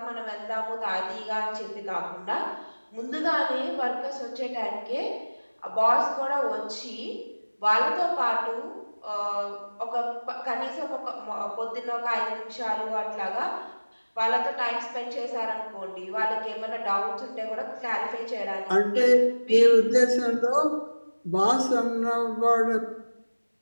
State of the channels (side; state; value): both; inverted; correlation -1.00